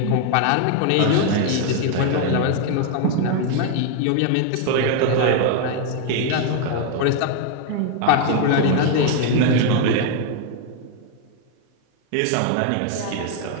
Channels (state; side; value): different; both; correlation 0.00